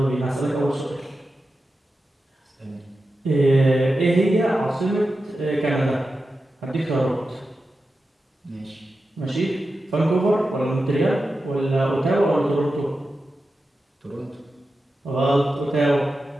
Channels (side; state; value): both; normal; correlation 0.91